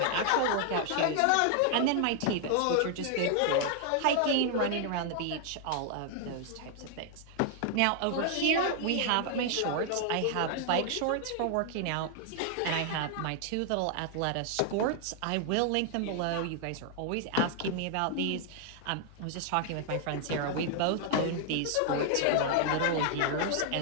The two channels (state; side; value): different; both; correlation 0.00